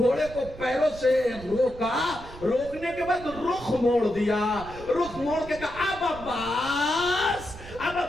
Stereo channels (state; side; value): noise; right; rumble, 15 dB below the sound